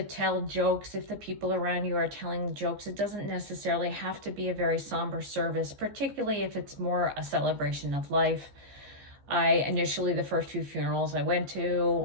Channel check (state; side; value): late; left; 15 ms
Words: tell jokes if the people around you are telling jokes. It doesn't necessarily have to be a very somber service, particularly if it's more a celebration of life. The first few funerals I went